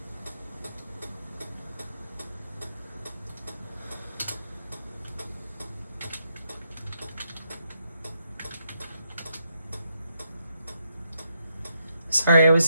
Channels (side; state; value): both; inverted; correlation -0.79